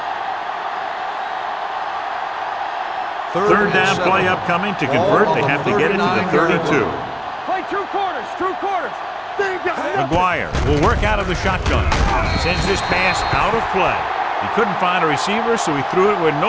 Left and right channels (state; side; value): identical; both; correlation 1.00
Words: 3rd down play upcoming. To convert, they have to get it to the 32. Play 2 quarters. 2 quarters. McGuire will work out of the shotgun. Sends this pass out of play. He couldn't find a receiver, so he threw it where